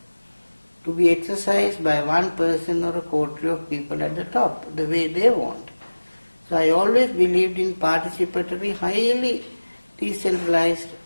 to be exercised by one person or a coterie of people at the top, the way they want. So I always believed in participatory, highly decentralized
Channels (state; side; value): inverted; both; correlation -1.00